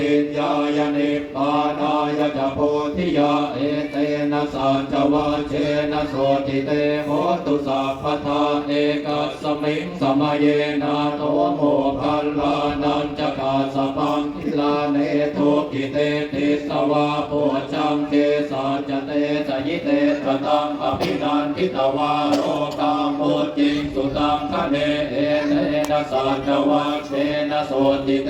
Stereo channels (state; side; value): identical; both; correlation 1.00